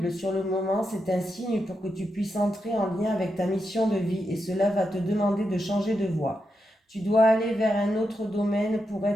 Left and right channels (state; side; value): normal; both; correlation 0.85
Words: sur le moment, c'est un signe pour que tu puisses entrer en lien avec ta mission de vie et cela va te demander de changer de voie. Tu dois aller vers un autre domaine pour